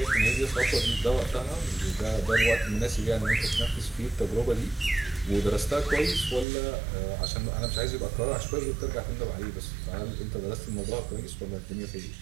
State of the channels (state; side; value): drops out; left; at 6.5 s